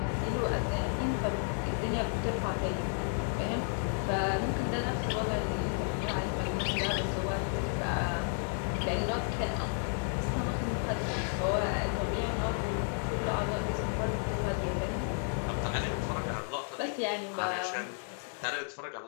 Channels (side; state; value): right; silent; 56 dB below the other